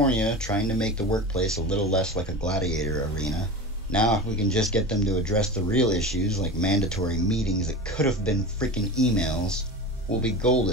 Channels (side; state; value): both; normal; correlation 0.29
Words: trying to make the workplace a little less like a gladiator arena. Now, if we can just get them to address the real issues, like mandatory meetings that could have been freaking emails, we'll be